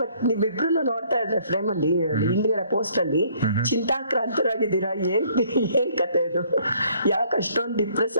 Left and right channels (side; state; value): both; inverted; correlation -0.62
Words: ಬಟ್ ನೀವಿಬ್ರು ನೋಡ್ತಾ ಇದ್ರೆ ಫ್ರೇಮ್ ಅಲ್ಲಿ ಹಿಂದ್ಗಡೆ ಪೋಸ್ಟ್ ಅಲ್ಲಿ ಚಿಂತಾಕ್ರಾಂತರಾಗಿದ್ದೀರಾ. ಏನ್ ಕತೆ ಇದು? ಯಾಕೆ ಅಷ್ಟೊಂದು ಡಿಪ್ರೆಸ್